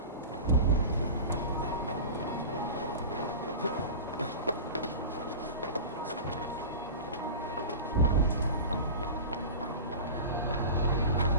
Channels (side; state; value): both; inverted; correlation -0.30